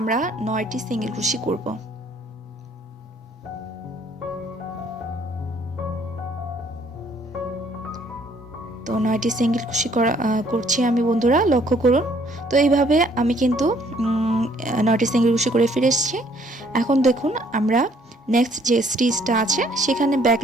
9টি সিঙ্গেল ক্রোশি করব। তো 9টি সিঙ্গেল ক্রোশি করছি আমি বন্ধুরা, লক্ষ্য করুন। তো এইভাবে আমি কিন্তু 9টি সিঙ্গেল ক্রোশি করে ফিরে এসেছি। এখন দেখুন আমরা নেক্সট যে স্টিচটা আছে সেখানে ব্যাক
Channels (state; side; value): normal; both; correlation 0.63